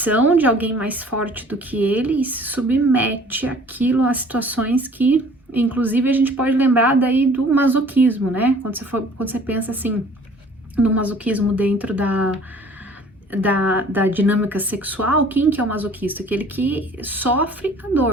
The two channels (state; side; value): normal; both; correlation 0.52